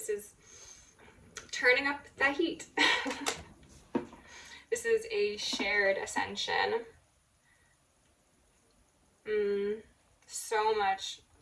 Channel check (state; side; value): identical; both; correlation 1.00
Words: is turning up the heat. This is a shared ascension. So much